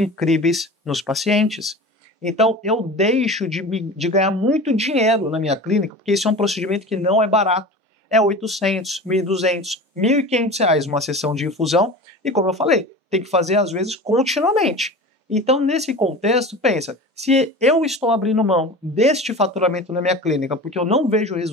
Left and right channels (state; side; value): normal; both; correlation 0.34